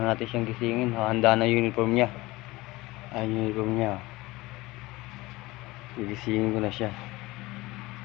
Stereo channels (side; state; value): right; quieter; 20.4 dB